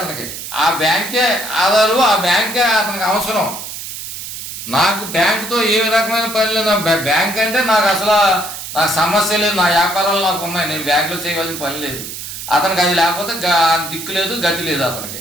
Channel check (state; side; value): noise; right; hiss, 9 dB below the sound